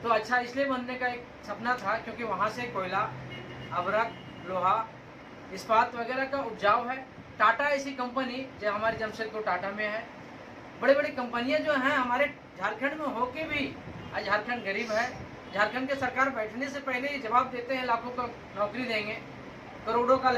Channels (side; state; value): both; identical; correlation 1.00